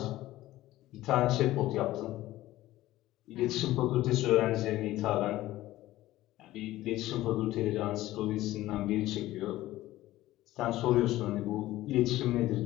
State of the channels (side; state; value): right; quieter; 16.0 dB